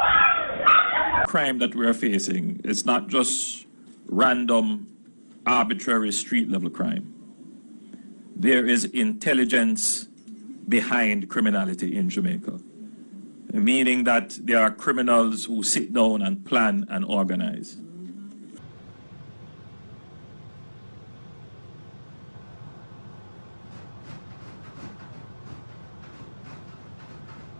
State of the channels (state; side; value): inverted; both; correlation -1.00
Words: Crime that we are facing is not just random, arbitrary street-level crime. There is intelligence behind criminality in Jamaica, meaning that there are criminals who sit down and plan and organize.